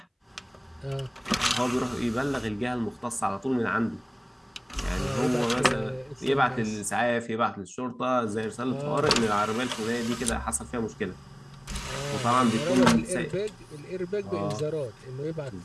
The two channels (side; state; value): both; identical; correlation 1.00